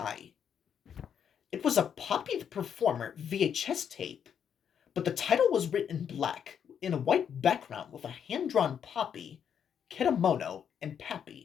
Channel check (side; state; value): right; quieter; 8.2 dB